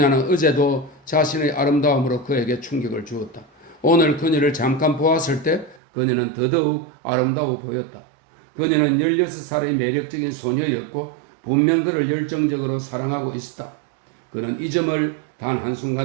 어제도 자신의 아름다움으로 그에게 충격을 주었다. 오늘 그녀를 잠깐 보았을 때 그녀는 더더욱 아름다워 보였다. 그녀는 16살의 매력적인 소녀였고 분명 그를 열정적으로 사랑하고 있었다. 그는 이 점을 단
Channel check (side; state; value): left; drops out; at 5.8 s